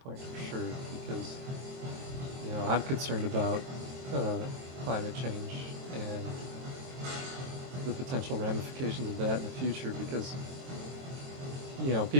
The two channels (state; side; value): late; left; 23 ms